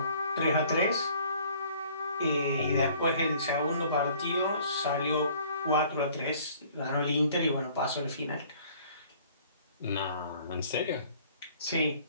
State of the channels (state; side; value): inverted; both; correlation -0.55